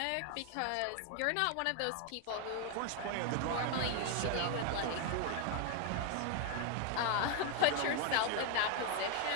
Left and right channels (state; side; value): different; both; correlation 0.01